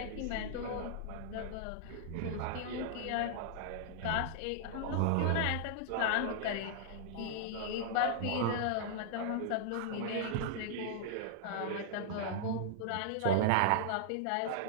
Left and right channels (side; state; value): both; different; correlation -0.01